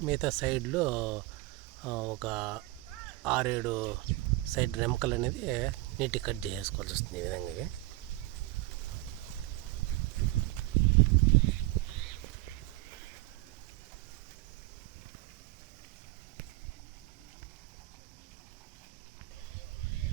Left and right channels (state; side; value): quieter; left; 19.2 dB